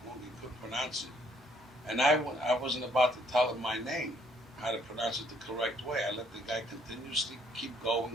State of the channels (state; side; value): normal; both; correlation 0.66